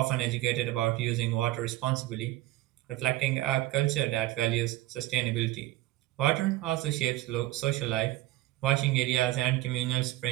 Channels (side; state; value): left; quieter; 16.8 dB